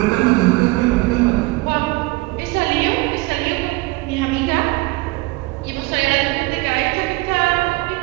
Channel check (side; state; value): left; quieter; 22.8 dB